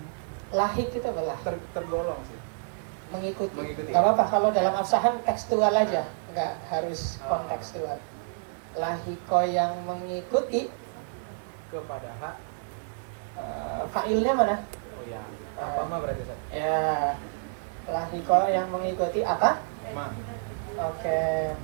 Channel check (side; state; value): left; silent; digital silence